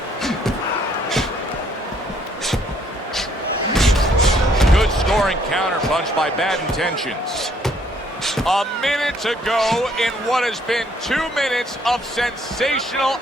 Good scoring counterpunch by Bad Intentions. A minute to go in what has been 2 minutes of sensational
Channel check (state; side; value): normal; both; correlation 0.66